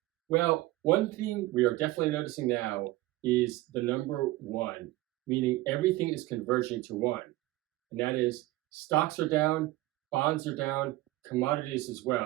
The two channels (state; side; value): quieter; left; 18.0 dB